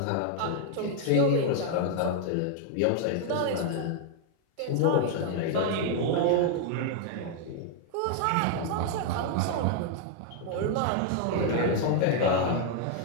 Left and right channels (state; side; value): different; both; correlation 0.00